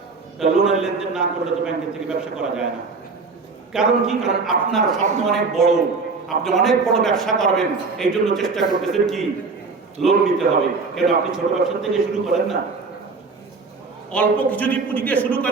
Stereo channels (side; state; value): left; quieter; 4.3 dB